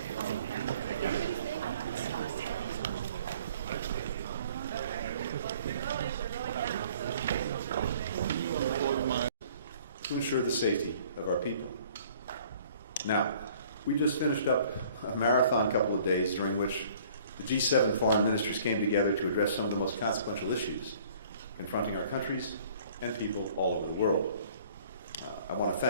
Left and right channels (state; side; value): inverted; both; correlation -0.54